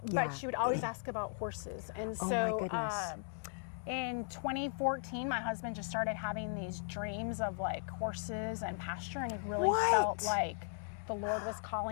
but she would always ask about horses. And so, in 2014, my husband just started having these dreams of like horses and pasture, and he really felt like the Lord was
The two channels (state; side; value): silent; right; digital silence